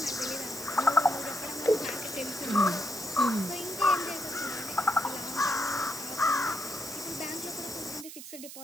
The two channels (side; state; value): right; noise; hiss, 12 dB below the sound